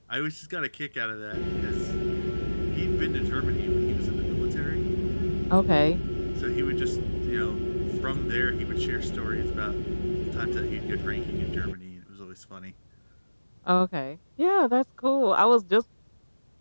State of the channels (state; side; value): inverted; both; correlation -1.00